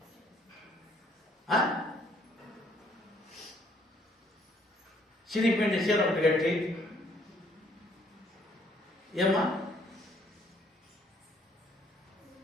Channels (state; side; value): normal; both; correlation 0.65